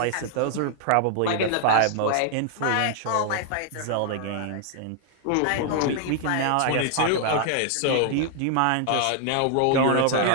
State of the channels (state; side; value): different; both; correlation 0.00